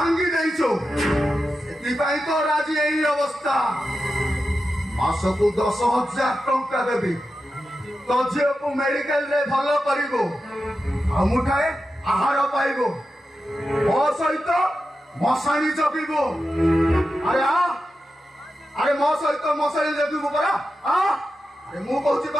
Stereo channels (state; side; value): normal; both; correlation 0.91